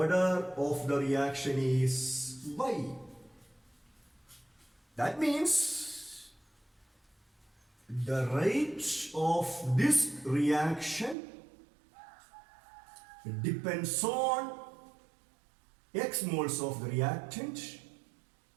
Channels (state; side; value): drops out; left; at 11.2 s